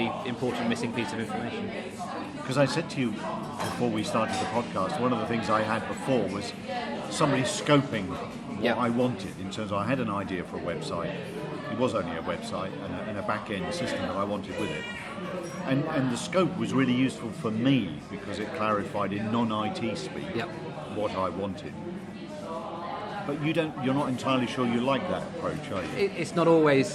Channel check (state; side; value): identical; both; correlation 1.00